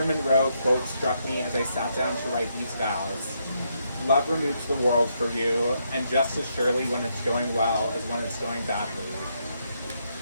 Monroe quote struck me as I sat down to write these vows. Love removes the world for you, and just as surely when it's going well as when it's going badly.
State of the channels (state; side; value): inverted; both; correlation -0.77